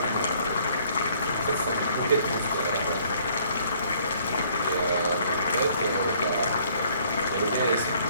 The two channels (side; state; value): both; inverted; correlation -0.61